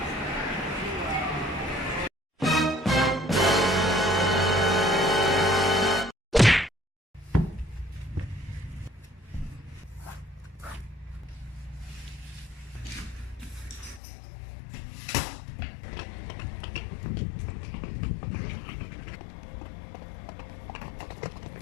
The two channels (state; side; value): drops out; right; at 14.0 s